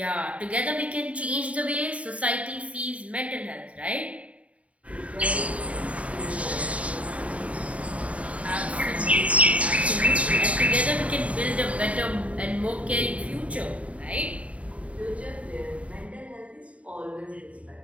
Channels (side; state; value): left; late; 0.066 ms